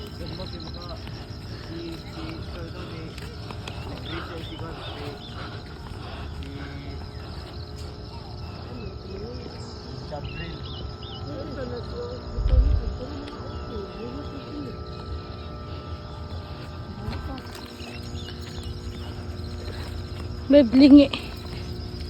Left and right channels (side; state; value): both; identical; correlation 1.00